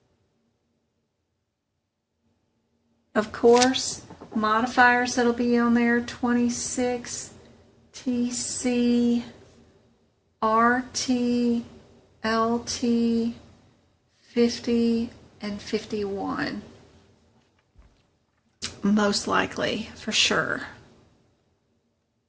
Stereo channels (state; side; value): identical; both; correlation 1.00